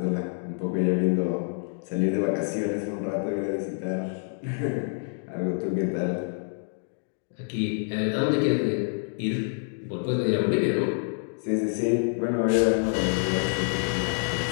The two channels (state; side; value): silent; right; 60 dB below the other